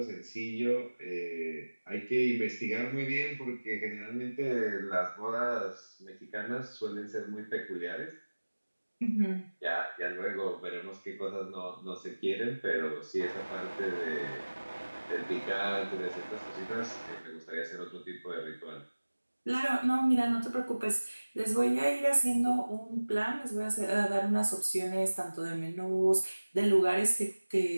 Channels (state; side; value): inverted; both; correlation -1.00